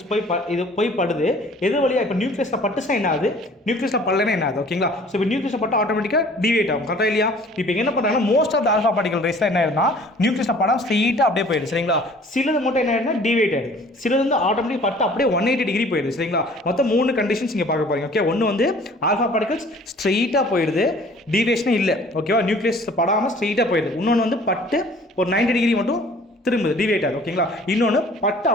இது போய் படுது. எது வழியாக இப்போ நியூக்ளியஸில் பட்டுச்சா என்ன ஆகுது, நியூக்ளியஸில் படலைன்னா என்ன ஆகுது? ஓகேங்களா? ஸோ இப்போ நியூக்ளியஸில் பட்டு ஆட்டோமேட்டிக்காக டிவேட் ஆகும். கரெக்டாக இல்லையா? இப்போ என்ன பண்ணுறாங்கன்னா, most of the alpha particle ரேஸ்ல என்ன ஆயிருந்தா நியூக்ளியஸில் படம் ஸ்ட்ரெயிட்டாக அப்படியே போயிடுது. சரிங்களா? சிலது மட்டும் என்ன ஆயிருந்தா டிவேட் ஆயிடுது. சிலது வந்து ஆட்டோமேட்டிக் பட்டு அப்படியே 180 டிகிரி போயிடுது. சரிங்களா? மொத்தம் 3 கண்டிஷன்ஸ் இங்கே பார்க்க போறீங்க. ஓகே, ஒன்று வந்து ஆல்ஃபா பார்ட்டிகல்ஸ் ஸ்ட்ரெயிட்டாக போயிடுது, டிவேஷனே இல்லை. ஓகேவா? நியூக்ளியஸ் படாமல் ஸ்ட்ரெயிட்டாக போயிடுது. இன்னொன்று வந்து பட்டு ஒரு 90 டிகிரி மட்டும் திரும்புது, டிவேட் ஆகுது. ஓகேங்களா? இன்னொன்று பட்டு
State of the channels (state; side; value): normal; both; correlation 0.51